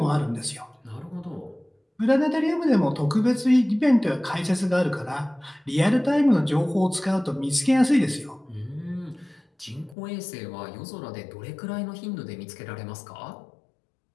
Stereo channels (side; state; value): right; drops out; at 10.0 s